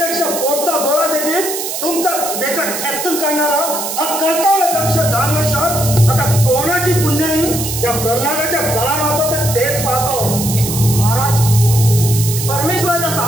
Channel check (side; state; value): right; noise; hiss, 5 dB below the sound